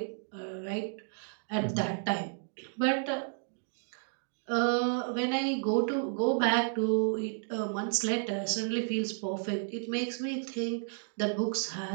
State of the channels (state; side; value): silent; left; digital silence